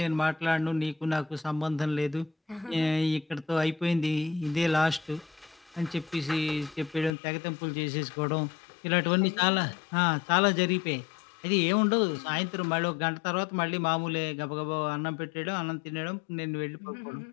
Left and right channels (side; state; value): right; drops out; at 7.1 s